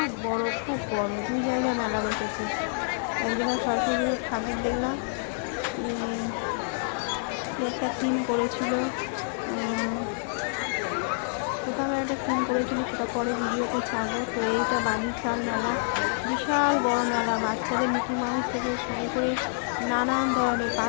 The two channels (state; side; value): silent; right; digital silence